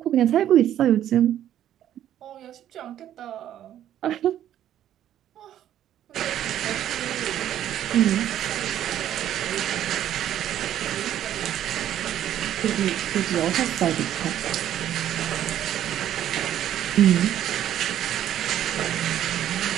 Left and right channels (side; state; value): left; quieter; 11.3 dB